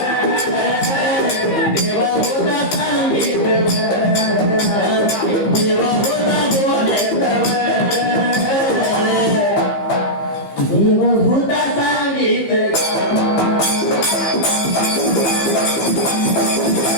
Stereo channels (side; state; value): right; late; 15 ms